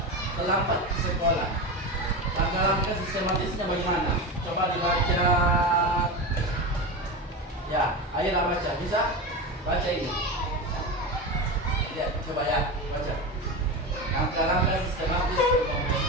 terlambat ke sekolah? Langkah-langkah sistematisnya bagaimana? Coba dibaca. Ya, ayolah baca. Bisa? Baca ini. Ya, coba ya, baca. Langkah-langkah sistematis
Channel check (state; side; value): normal; both; correlation 0.22